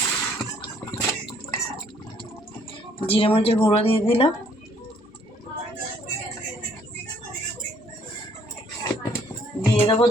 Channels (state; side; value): normal; both; correlation 0.63